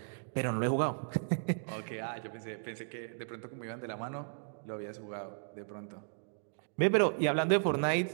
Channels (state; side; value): silent; left; digital silence